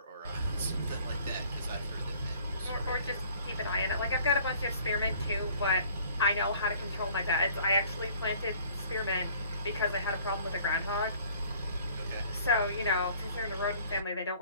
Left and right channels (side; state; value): both; inverted; correlation -0.55